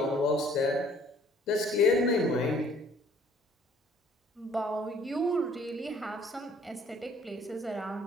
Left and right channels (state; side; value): normal; both; correlation 0.57